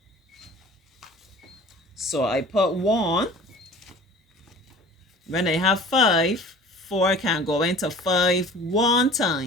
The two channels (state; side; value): normal; both; correlation 0.44